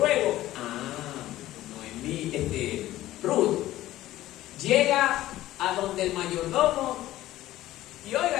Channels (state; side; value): quieter; right; 15.1 dB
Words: Noemí, Ruth, llega a donde el mayordomo, y